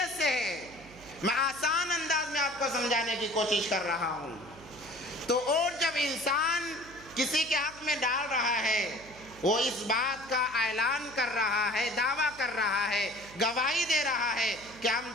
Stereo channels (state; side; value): noise; right; hum, 20 dB below the sound